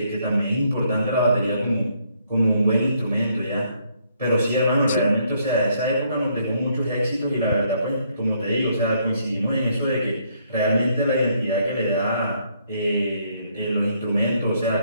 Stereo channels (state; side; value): inverted; both; correlation -0.70